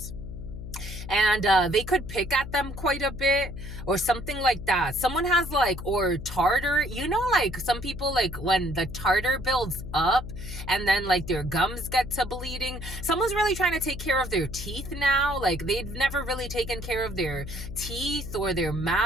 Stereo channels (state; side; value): noise; left; hum, 9 dB below the sound